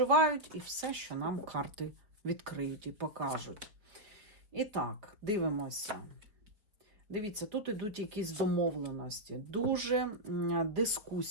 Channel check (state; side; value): late; left; 4.9 ms